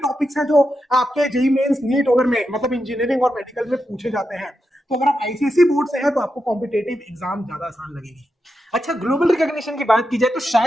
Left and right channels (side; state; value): both; normal; correlation 0.87